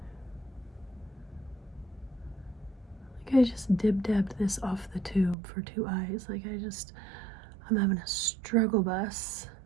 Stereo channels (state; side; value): drops out; left; at 5.4 s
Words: I just dib-dabbed this off the tube for 2 eyes. Like I'm having a struggle bus